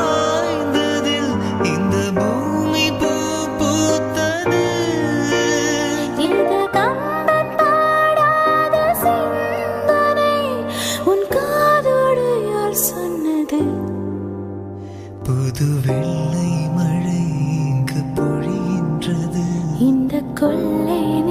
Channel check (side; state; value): both; identical; correlation 1.00